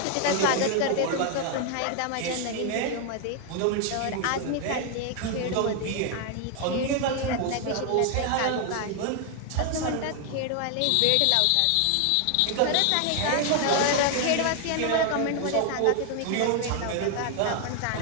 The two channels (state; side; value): different; both; correlation 0.00